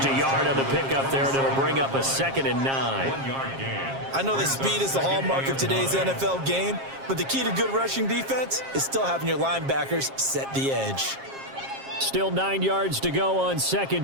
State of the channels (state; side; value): late; left; 7.4 ms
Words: a yard on the pickup there, and it'll bring up a 2nd and 9. I know that speed is the hallmark of today's NFL game, but the key to good rushing defense is still having your linebackers set the edge. Still 9 yards to go on